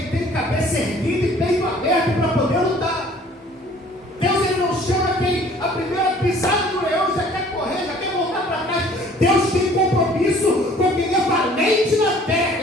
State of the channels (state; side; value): normal; both; correlation 0.54